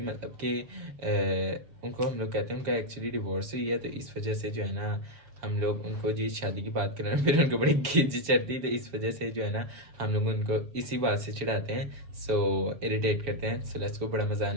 मतलब कि उनको हम लोग कहते हैं उनका एक्चुअली डिवोर्स हुई है, तो इस वजह से जो है ना हम लोग उनको जी शादी की बात करें फिर उनको बड़ी खिंच चढ़ती, तो इस वजह से जो है ना हम लोग उनको इसी बात से चिढ़ाते हैं, सो इरिटेट करते हैं। सो लेट्स गो, बड़ा मजा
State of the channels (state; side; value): late; left; 7.0 ms